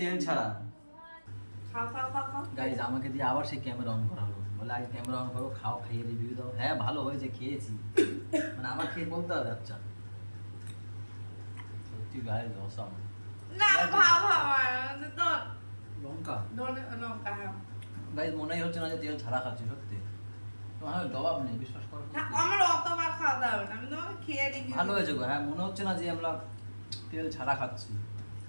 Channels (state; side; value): inverted; both; correlation -1.00